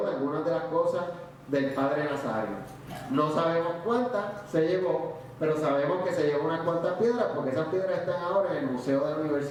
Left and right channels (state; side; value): identical; both; correlation 1.00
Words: de algunas de las cosas del padre Nazario. No sabemos cuántas se llevó, pero sabemos que se llevó unas cuantas piedras, porque esas piedras están ahora en el Museo de la